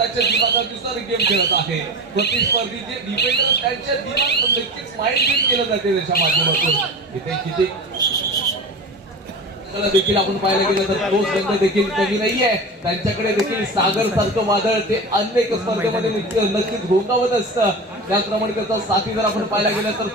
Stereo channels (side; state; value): both; normal; correlation 0.29